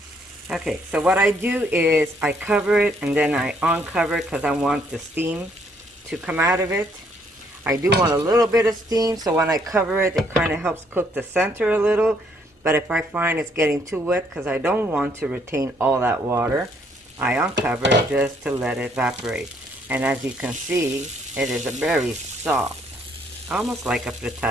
Okay, so what I do is I cover it and then I uncover it because I want the steam to come out of it. I do want a little bit of steam, so when I cover it, it kind of helps cook the center a little. But if I find it's getting too wet, because I don't want to retain all that water, I uncover it just to let it evaporate. And as you can see, it is a very soft, almost like a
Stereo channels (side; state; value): both; normal; correlation 0.68